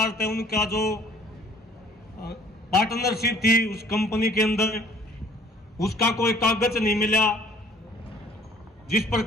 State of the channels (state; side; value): normal; both; correlation 0.55